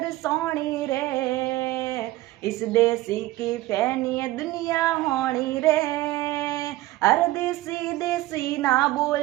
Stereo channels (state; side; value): quieter; left; 17.5 dB